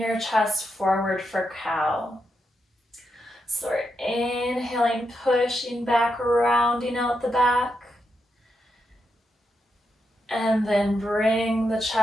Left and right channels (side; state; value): both; normal; correlation 0.84